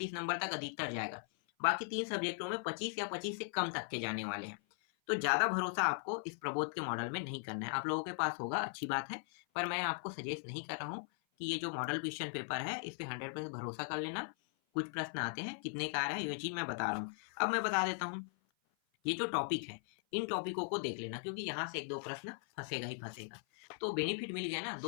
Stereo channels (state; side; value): silent; right; 52 dB below the other